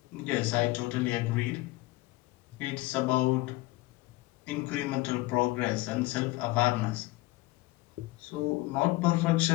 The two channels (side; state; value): right; quieter; 20.0 dB